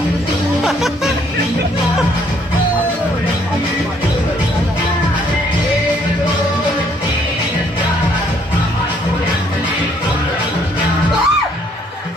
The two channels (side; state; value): both; normal; correlation 0.66